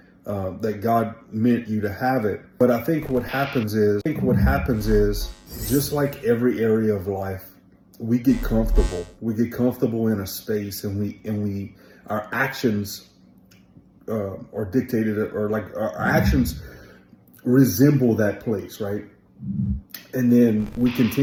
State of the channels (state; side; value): identical; both; correlation 1.00